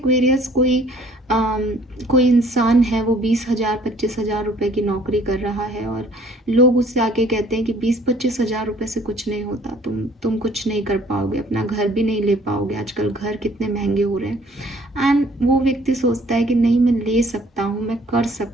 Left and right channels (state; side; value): normal; both; correlation 0.57